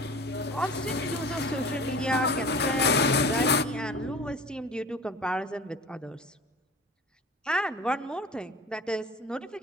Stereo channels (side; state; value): both; normal; correlation 0.38